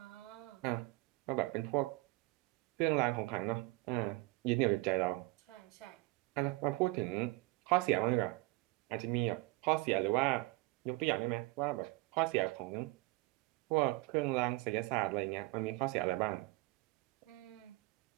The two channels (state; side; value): quieter; left; 22.3 dB